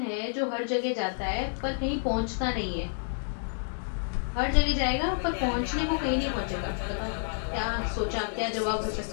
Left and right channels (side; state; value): right; silent; digital silence